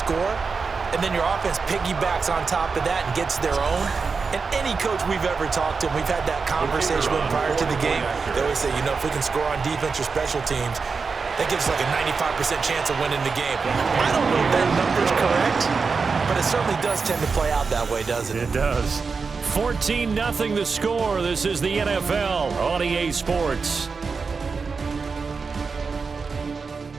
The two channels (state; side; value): quieter; left; 4.9 dB